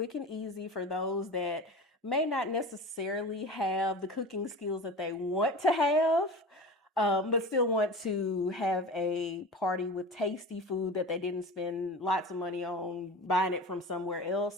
and easy for those that may not necessarily have the cooking skills that they want to have, but still want to have a party with tasty food that they didn't spend lots of money on buying it from somewhere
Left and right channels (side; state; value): both; normal; correlation 0.32